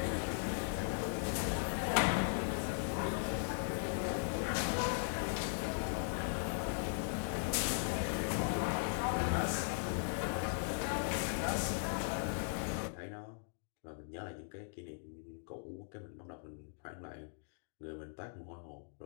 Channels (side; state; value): right; silent; digital silence